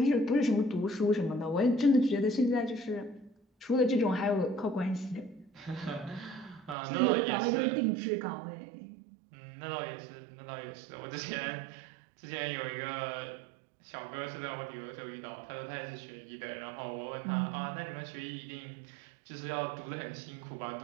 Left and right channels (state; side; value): drops out; left; at 6.8 s